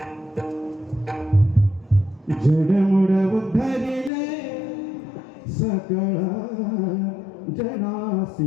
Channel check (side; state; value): right; drops out; at 4.1 s